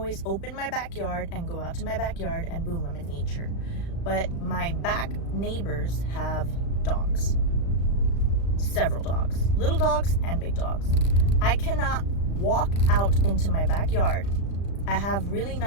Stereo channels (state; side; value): late; right; 35 ms